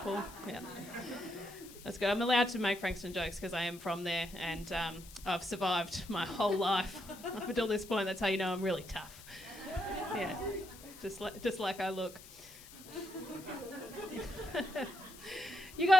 Yeah. That's good. I'm allowed to make Frankston jokes because I am from there and I've survived my whole life up until this point. That's how you know I'm really tough. Yeah. Just like I look. You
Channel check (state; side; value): noise; left; hiss, 17 dB below the sound